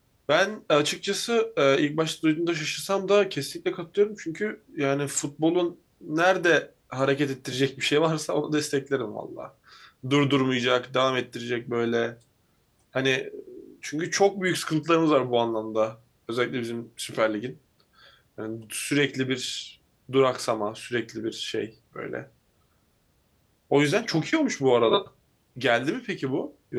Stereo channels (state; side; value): identical; both; correlation 1.00